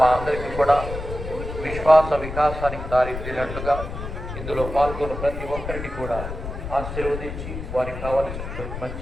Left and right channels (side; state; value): left; noise; rumble, 7 dB below the sound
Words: మా అందరికీ కూడా విశ్వాస వికాసానికి దారితీరినట్లుగా ఇందులో పాల్గొన్న ప్రతి ఒక్కరిని కూడా ఆశీర్వదించి వారికి కావలసిన